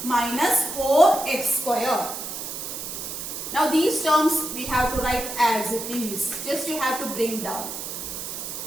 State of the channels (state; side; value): noise; right; hiss, 7 dB below the sound